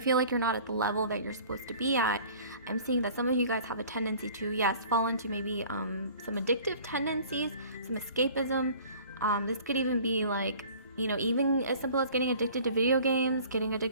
like you're not at the level that you're supposed to be at, I'm seeing that some of you guys have a tendency to, yes, fall into maybe some addictive tendencies, some escapism. This could even be like, even as simple as getting addicted to video games, getting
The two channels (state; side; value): inverted; both; correlation -0.48